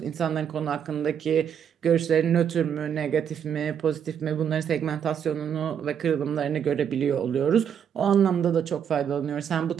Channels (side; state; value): left; quieter; 8.3 dB